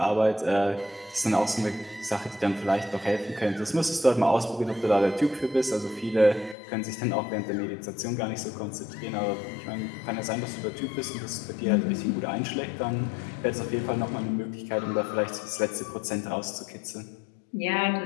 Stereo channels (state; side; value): drops out; right; at 6.6 s